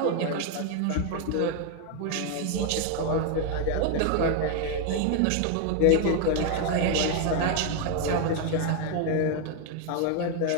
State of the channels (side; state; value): both; different; correlation 0.01